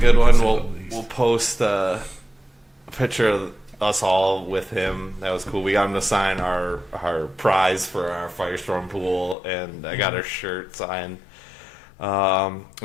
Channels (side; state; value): right; drops out; at 9.3 s